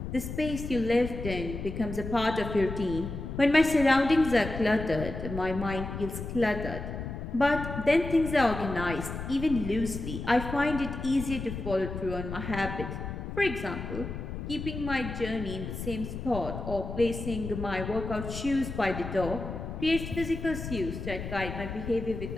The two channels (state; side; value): noise; left; rumble, 7 dB below the sound